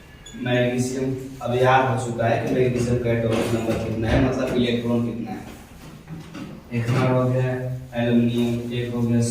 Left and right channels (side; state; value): both; identical; correlation 1.00